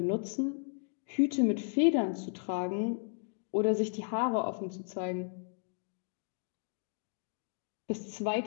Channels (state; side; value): silent; right; digital silence